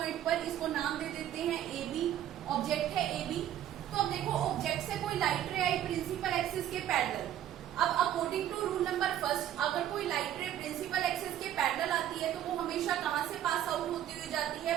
पर, इसको नाम दे देते हैं ए बी, ऑब्जेक्ट है ए बी। तो अब देखो ऑब्जेक्ट से कोई लाइट रे आई प्रिंसिपल एक्सिस के पैरेलल। अब according to rule number first, अगर कोई लाइट रे प्रिंसिपल एक्सिस के पैरेलल आती है तो वो हमेशा कहां से पास आउट होती हुई जाती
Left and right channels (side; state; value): left; quieter; 11.4 dB